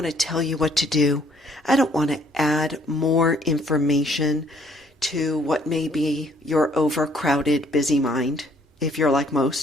to tell you what to do. I don't want to add more information to what may be your overcrowded, busy mind, if you're like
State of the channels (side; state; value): both; normal; correlation 0.63